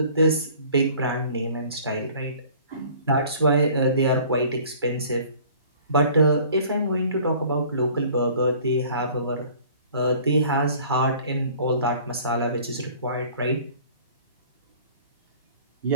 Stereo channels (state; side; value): inverted; both; correlation -0.51